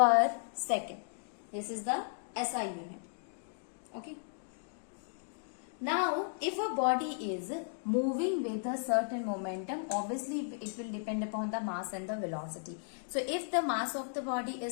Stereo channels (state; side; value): silent; right; digital silence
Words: second. This is the SI unit. Okay. Now, if a body is moving with a certain momentum, obviously it will depend upon the mass and the velocity. So, if the mass of the body